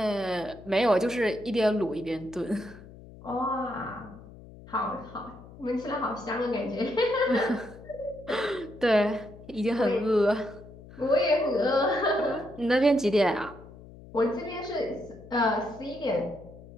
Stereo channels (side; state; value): left; noise; hum, 18 dB below the sound